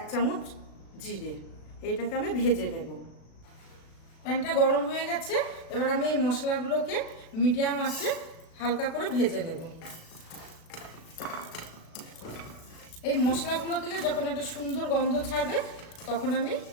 চামচ জিরে। এইটাকে আমি ভেজে নেব। প্যানটা গরম হয়ে গেছে, এবার আমি এই মশলাগুলোকে মিডিয়াম আঁচে হালকা করে ভেজে নেব। এই মশলাগুলো থেকে যখন একটা সুন্দর গন্ধ ছাড়বে তখন আমি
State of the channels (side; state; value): right; late; 36 ms